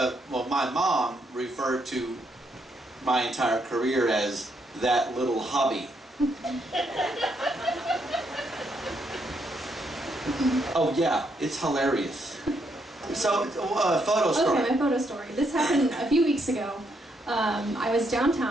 my mom referred to my entire career as that little hobby. Oh yeah, it's hilarious. So, photo story. Okay, my photo story. This happened a few weeks ago. I was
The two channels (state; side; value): normal; both; correlation 0.76